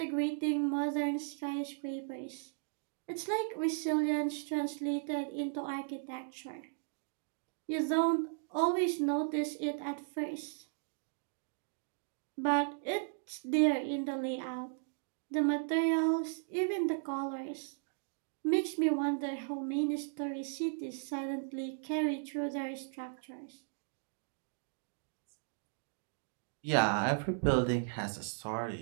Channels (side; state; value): left; silent; digital silence